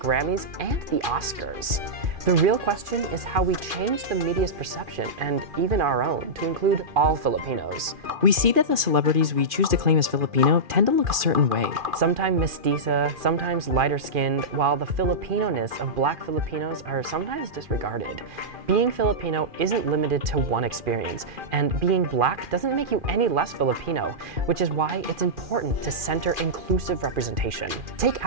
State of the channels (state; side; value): late; left; 2.4 ms